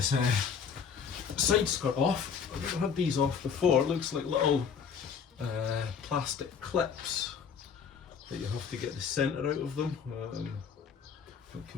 side skirt off. I've never had these off before. It looks like little plastic clips that you have to get the centre out of them. That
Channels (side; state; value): right; quieter; 6.7 dB